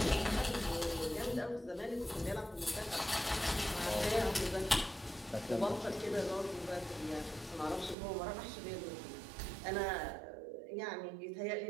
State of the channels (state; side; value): drops out; left; at 8.0 s